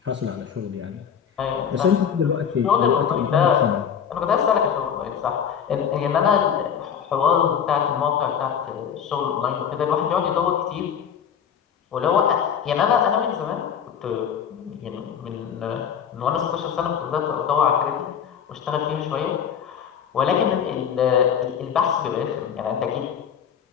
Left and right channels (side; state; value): right; quieter; 8.0 dB